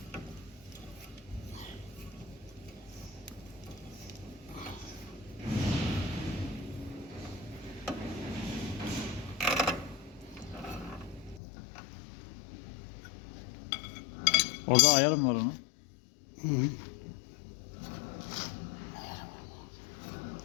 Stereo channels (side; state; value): right; drops out; at 11.4 s